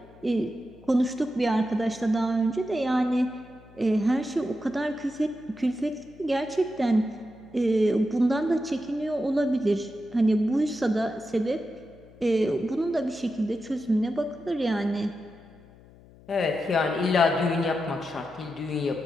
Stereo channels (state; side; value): noise; left; hum, 24 dB below the sound